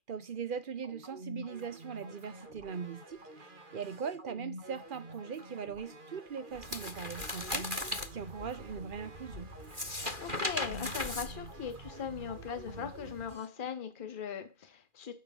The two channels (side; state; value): left; late; 2.4 ms